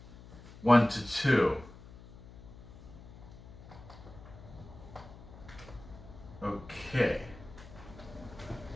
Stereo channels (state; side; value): noise; left; hum, 18 dB below the sound